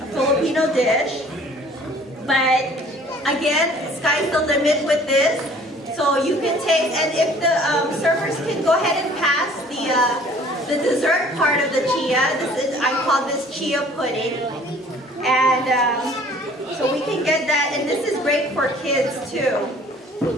a Filipino dish. But again, sky's the limit with this. So you can take, and if the servers can go ahead and pass the dessert part of the chia. I call this chia pudding, and so we can get that. And this is great for kids too.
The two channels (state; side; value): normal; both; correlation 0.53